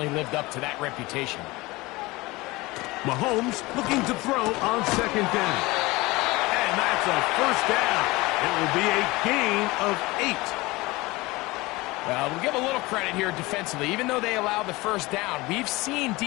lived up to that reputation. Mahomes looking to throw on second down. And that's a first down. It will be a gain of 8. Well, we'll give a little credit here defensively. Even though they allow the first down, we've seen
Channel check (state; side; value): quieter; right; 21.6 dB